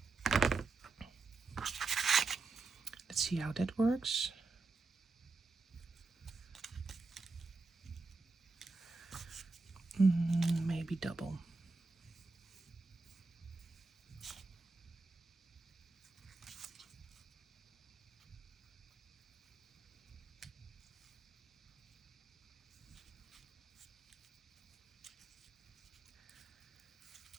Let's see how that works. Maybe double.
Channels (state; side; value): quieter; left; 3.7 dB